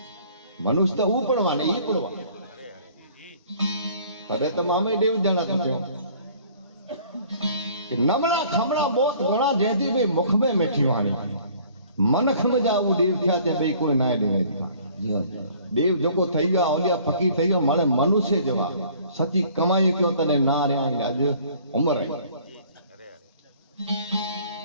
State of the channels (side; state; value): both; inverted; correlation -0.54